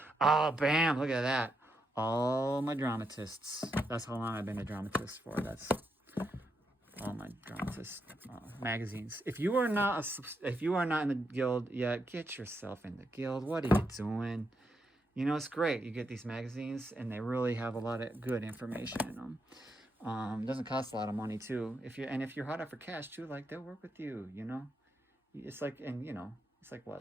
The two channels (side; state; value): both; normal; correlation 0.81